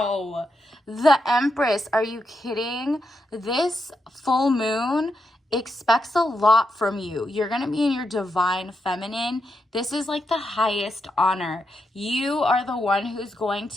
the Empress. Are you kidding? This full moon expects a lot from you. You're going to be in your divine feminine. This is like the highest honor. You are the one who's going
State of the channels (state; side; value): normal; both; correlation 0.83